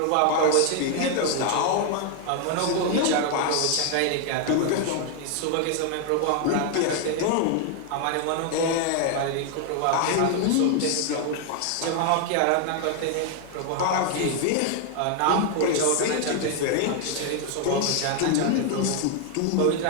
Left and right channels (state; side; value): different; both; correlation 0.00